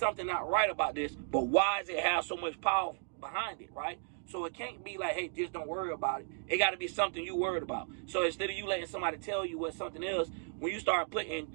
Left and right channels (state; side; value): silent; left; 55 dB below the other